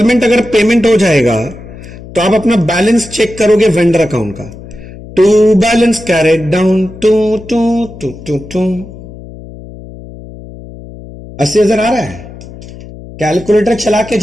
अगर पेमेंट हो जाएगा तो आप अपना बैलेंस चेक करोगे वेंडर अकाउंट का। To balance carried down to to to to to 80,000 आ रहा है। कैलकुलेटर चला के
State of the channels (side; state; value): left; noise; hum, 16 dB below the sound